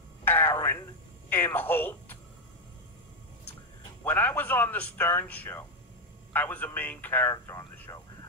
Aaron Imholt. When I was on the Stern Show, I was a main character on the show.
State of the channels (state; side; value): normal; both; correlation 0.04